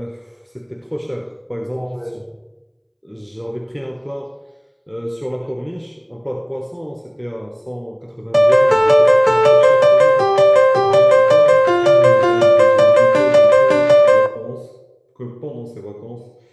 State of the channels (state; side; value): identical; both; correlation 1.00